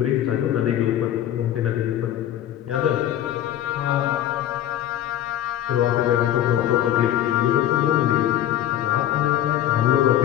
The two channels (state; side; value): quieter; right; 11.9 dB